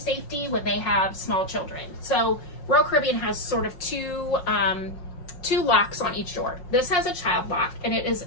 when they have small children. So Royal Caribbean has sort of two locks on each door. This has a child lock, and it is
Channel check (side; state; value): right; late; 5.5 ms